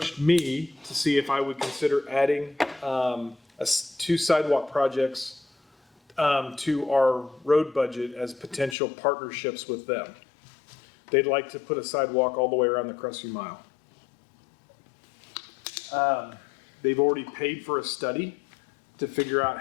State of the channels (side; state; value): right; drops out; at 8.8 s